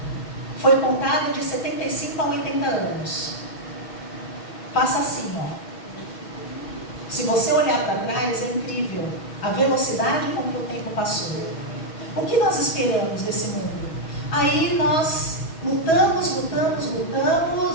Foi contada de 75 a 80 anos. Passa assim, ó. Se você olhar para trás, é incrível a velocidade com que o tempo passou. O que nós esperamos desse mundo? Aí nós lutamos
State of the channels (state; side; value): late; right; 6.2 ms